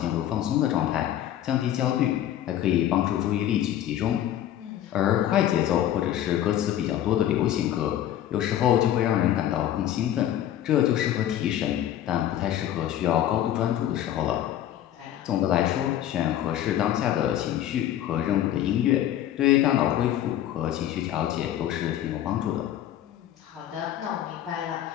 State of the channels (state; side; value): quieter; right; 11.7 dB